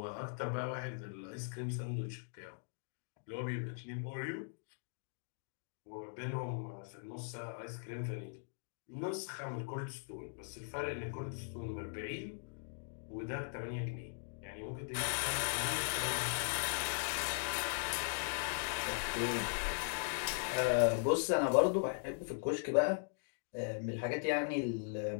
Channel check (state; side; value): silent; right; digital silence